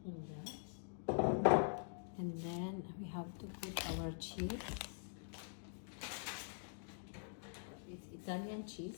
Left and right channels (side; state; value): right; silent; digital silence